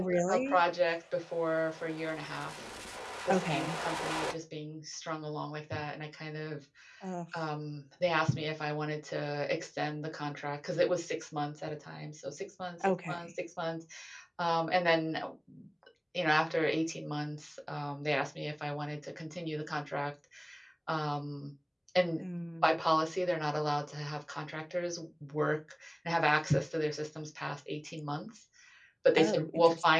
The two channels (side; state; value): both; identical; correlation 1.00